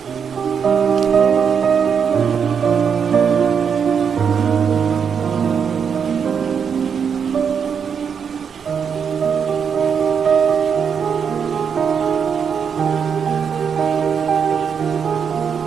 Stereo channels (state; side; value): quieter; left; 6.9 dB